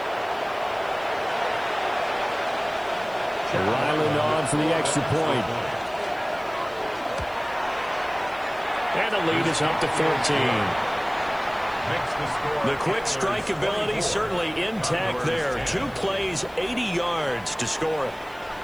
Ryland on for the extra point. And the lead is up to 14. The quick strike ability certainly intact there. 2 plays, 80 yards to score it.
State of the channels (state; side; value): noise; right; hiss, 26 dB below the sound